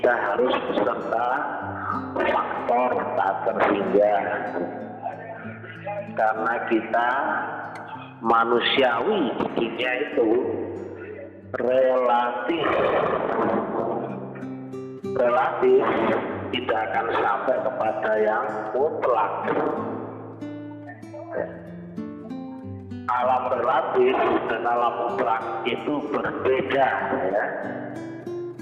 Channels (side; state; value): both; identical; correlation 1.00